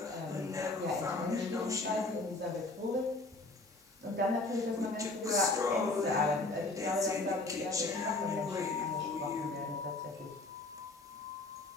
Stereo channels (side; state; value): right; quieter; 3.1 dB